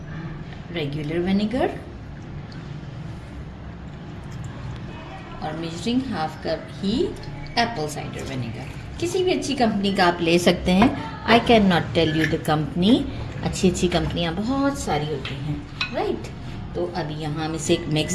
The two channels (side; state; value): both; identical; correlation 1.00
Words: रेगुलर विनेगर और मेजरिंग 1/2 कप ही एप्पल साइडर विनेगर। किसी भी अच्छी कंपनी का आप ले सकते हैं। I can not tell you the company. अच्छी अच्छी कंपनियां बहुत सारी होती हैं, राइट। तो अभी यहाँ हम इसे एक मिक्स